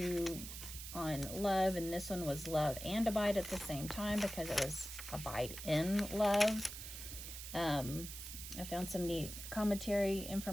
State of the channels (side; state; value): right; noise; hiss, 9 dB below the sound